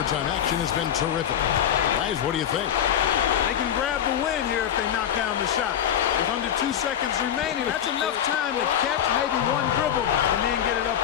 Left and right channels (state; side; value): quieter; right; 9.6 dB